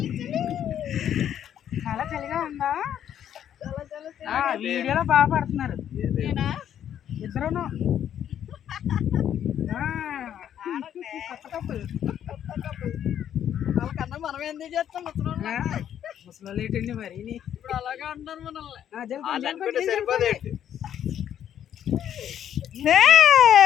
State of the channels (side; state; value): right; quieter; 10.0 dB